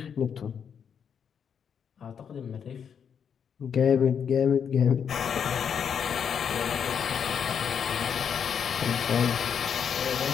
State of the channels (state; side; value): quieter; right; 7.5 dB